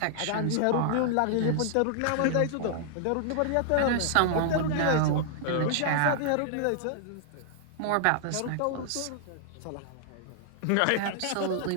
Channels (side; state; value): both; different; correlation -0.01